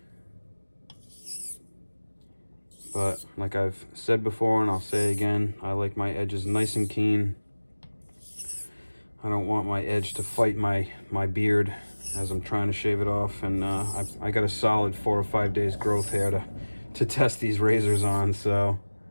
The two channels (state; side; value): inverted; both; correlation -1.00